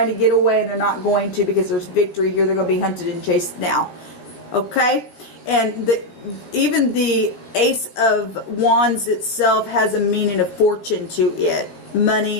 to get away and they're not going to, because there's victory here. They're going to be hunted and chased now. Okay? And even the Ace of Wands itself has a meaning of fortune to it.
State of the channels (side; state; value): right; late; 17 ms